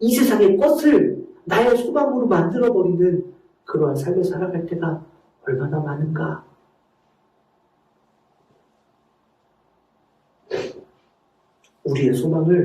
이 세상의 것을 나의 소망으로 만들어버리는 그러한 삶을 살아갈 때가 얼마나 많은가. 우리의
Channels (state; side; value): identical; both; correlation 1.00